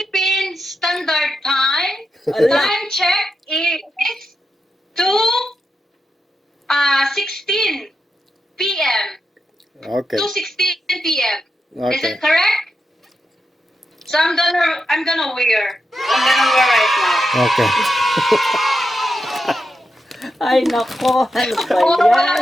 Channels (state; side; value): normal; both; correlation 0.86